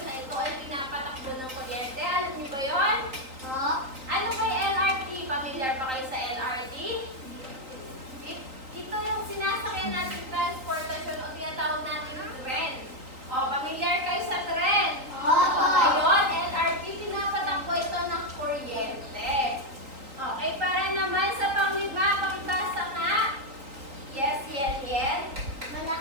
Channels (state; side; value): late; left; 3.9 ms